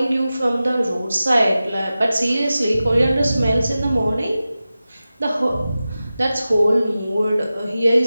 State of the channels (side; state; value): both; inverted; correlation -0.95